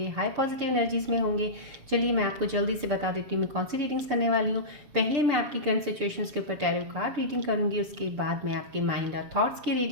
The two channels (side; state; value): left; late; 7.2 ms